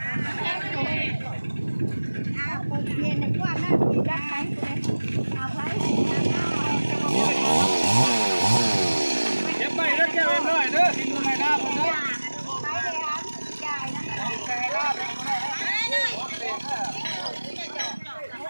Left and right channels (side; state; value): both; inverted; correlation -1.00